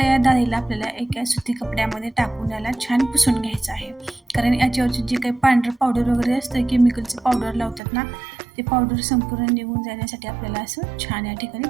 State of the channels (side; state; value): left; drops out; at 7.8 s